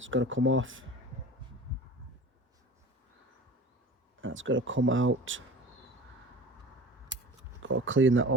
got to come off. That's got to come out. Got to clean that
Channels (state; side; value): normal; both; correlation 0.38